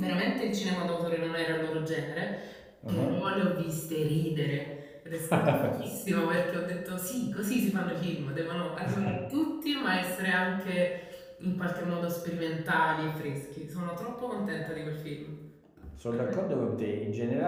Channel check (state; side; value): identical; both; correlation 1.00